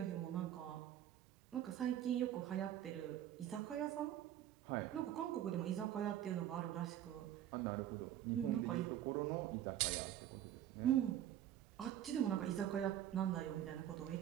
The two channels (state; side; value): quieter; left; 11.4 dB